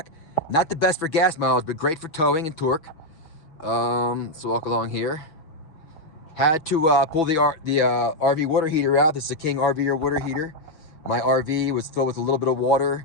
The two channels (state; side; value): late; right; 6.1 ms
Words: Not the best for gas mileage, but great for towing and torque. So walk along here. Had to pull the RV water heater out. This is a King RV water heater. My RV was filled with a little bit of